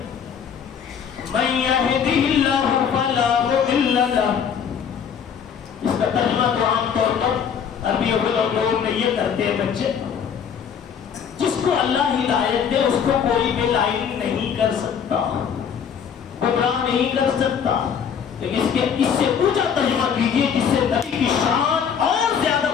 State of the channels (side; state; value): right; quieter; 7.5 dB